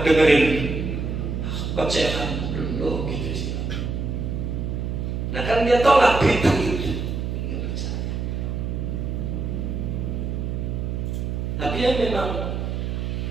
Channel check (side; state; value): right; noise; hum, 2 dB below the sound